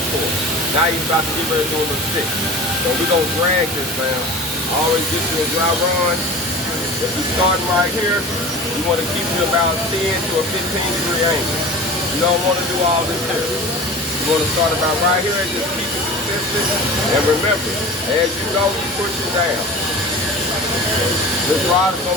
core. Now he's about to get ready to do a little stick. So we're gonna drag this, man. Always get you a dry run. If you're starting right here, you want to keep it about 10 to a 15-degree angle. You don't want to do all this here. You want to start about right here and just keep it consistent. And remember, as you go, you push it down. This rod is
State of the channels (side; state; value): both; normal; correlation 0.36